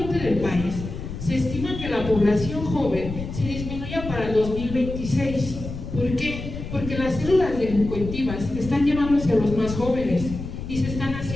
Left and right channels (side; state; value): left; noise; rumble, 8 dB below the sound